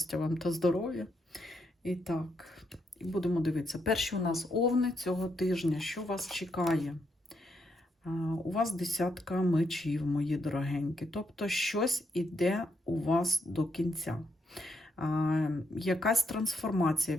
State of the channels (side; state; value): both; normal; correlation 0.79